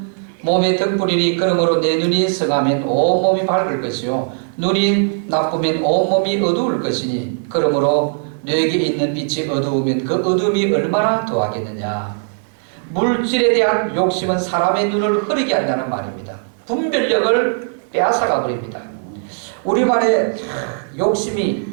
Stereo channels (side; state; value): left; silent; digital silence